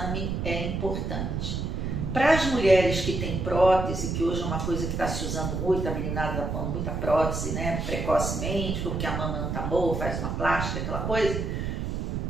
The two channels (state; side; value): noise; right; rumble, 2 dB below the sound